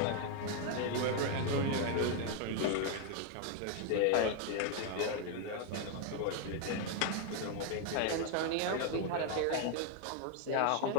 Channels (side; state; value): both; different; correlation 0.00